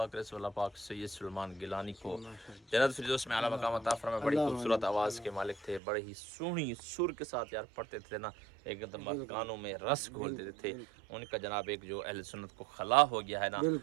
کرے سو اللہ پاک سید سلیمان گیلانی کو جنت فردوس میں اعلیٰ مقام عطا فرمائے. بڑی خوبصورت آواز کے مالک تھے, بڑے ہی سونی سر کے ساتھ یار پڑھتے تھے نا, ایک دم کانوں میں رس گھولتے تھے. ان کا جناب ایک جو اہل سنت کو خلا ہو گیا ہے نا,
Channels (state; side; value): drops out; left; at 5.8 s